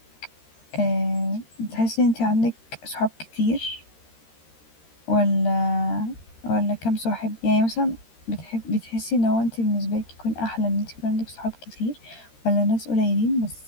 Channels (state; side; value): late; right; 13 ms